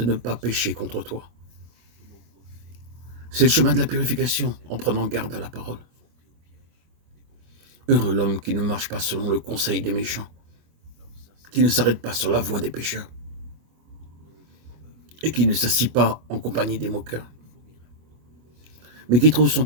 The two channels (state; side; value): late; left; 25 ms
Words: ne pas pécher contre toi. C'est le chemin de la purification, en prenant garde à la parole. Heureux l'homme qui ne marche pas selon le conseil des méchants, qui ne s'arrête pas sur la voie des pécheurs, et qui ne s'assit pas en compagnie des moqueurs, mais qui trouve son